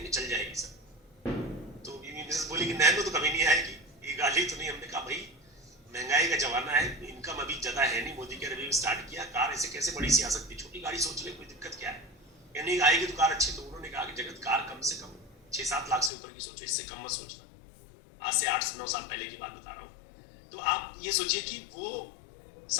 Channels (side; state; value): right; drops out; at 16.1 s